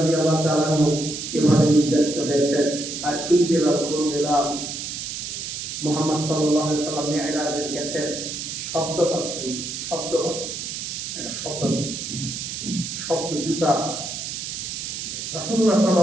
তাআলা আনহু এভাবে নির্যাতিত হয়েছেন। আর এই বেলাল কোন বেলাল? মুহাম্মদ সাল্লাল্লাহু আলাইহি সাল্লাম মিরাজে গেছেন, শব্দ পাচ্ছেন, একটা শব্দ জুতা। রাসূলুল্লাহ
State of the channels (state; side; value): noise; right; hiss, 6 dB below the sound